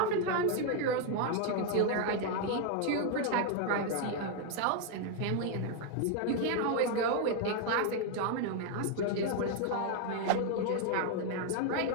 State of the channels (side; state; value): both; different; correlation 0.01